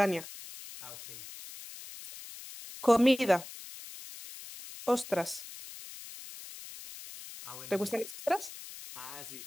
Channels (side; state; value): left; noise; hiss, 14 dB below the sound